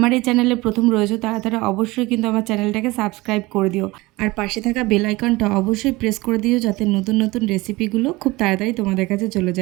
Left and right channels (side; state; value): left; quieter; 21.4 dB